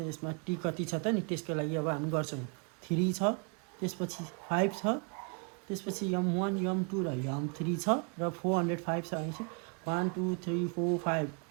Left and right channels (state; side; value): quieter; left; 36.0 dB